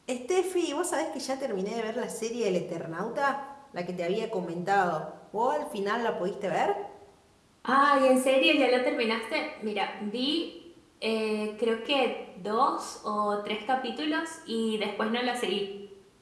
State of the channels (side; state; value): both; identical; correlation 1.00